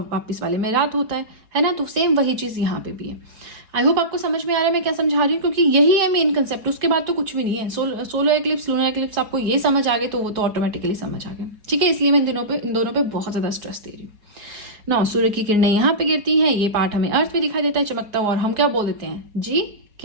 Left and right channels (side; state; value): left; late; 4.8 ms